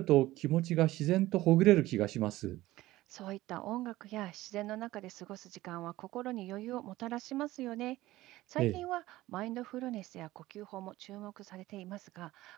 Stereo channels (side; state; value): left; quieter; 17.0 dB